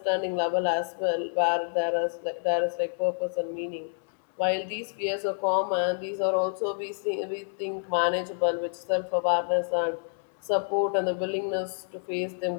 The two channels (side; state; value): right; silent; digital silence